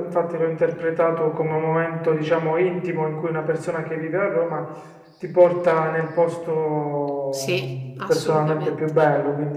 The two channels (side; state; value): both; identical; correlation 1.00